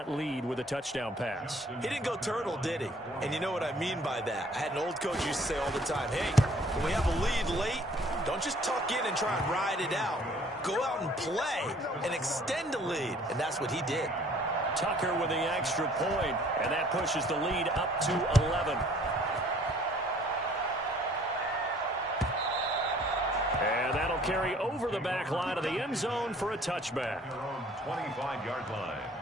lead with a touchdown pass. He didn't go turtle, did he? And you know what I mean by that. I had an old coach used to say all the time, hey, when we have a lead late, don't just tuck in and try and ride it out. Go out and play and extend the lead. And that's what he did. Tucker with the extra point, and that pushes the lead up to 11. And that'll carry over the back line of the end zone for a touchback. 25-yard line.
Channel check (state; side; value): normal; both; correlation 0.56